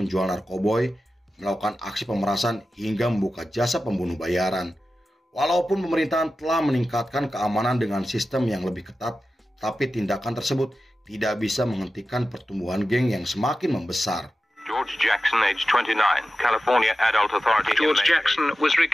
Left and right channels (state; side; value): normal; both; correlation 0.93